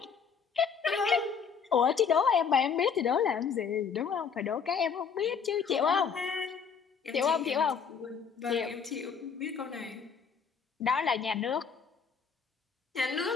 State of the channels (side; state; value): right; quieter; 6.3 dB